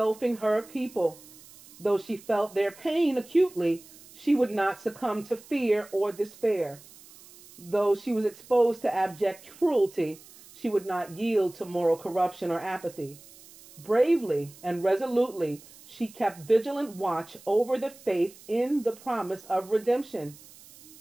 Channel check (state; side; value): noise; right; hiss, 22 dB below the sound